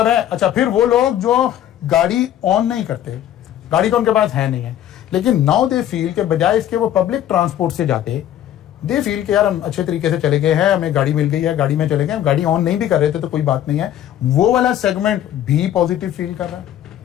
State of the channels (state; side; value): quieter; right; 11.5 dB